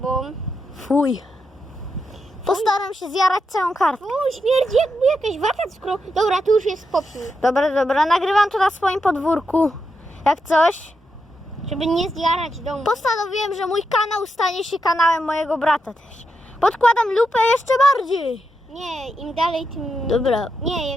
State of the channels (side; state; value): both; normal; correlation 0.84